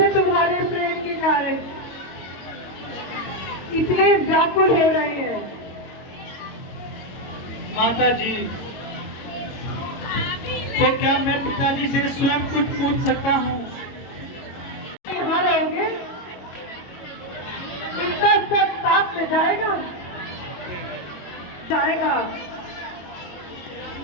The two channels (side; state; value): right; late; 22 ms